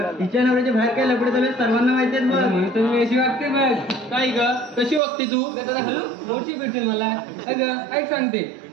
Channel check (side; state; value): left; drops out; at 5.0 s